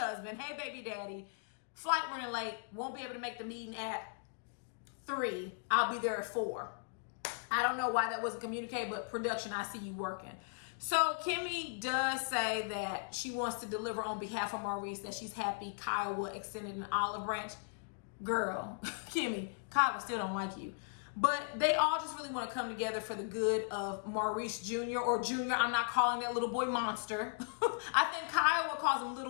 Hey, baby daddy. Flight running late. Won't be able to make the meeting at 3. I'll be there at 4. I don't know why that wasn't communicated, but production, I see you working. So Kimmy does say that she wants to deliver on behalf of Maurice, that she's happy Kiowa extended an olive branch. Girl, Kimmy, Kiowa still don't like you. But they all just really want to come together for the good of Maurice Jr. or Junior. I'm not calling that little boy monster. I think Kiowa calls him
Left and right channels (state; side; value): silent; right; digital silence